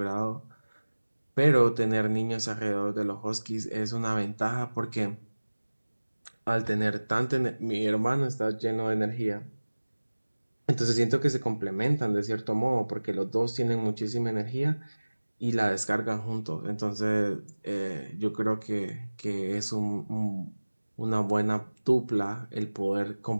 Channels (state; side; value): inverted; both; correlation -1.00